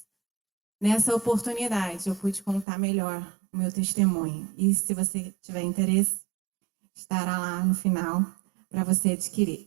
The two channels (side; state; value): left; drops out; at 2.7 s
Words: nessa oportunidade eu pude contar melhor o meu testemunho. E se você tiver interesse, estará lá no final para você adquirir.